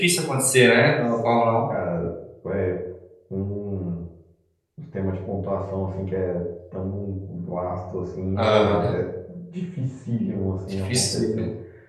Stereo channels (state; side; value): identical; both; correlation 1.00